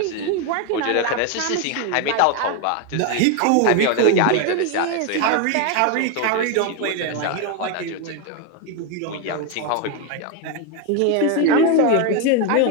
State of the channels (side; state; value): both; different; correlation 0.02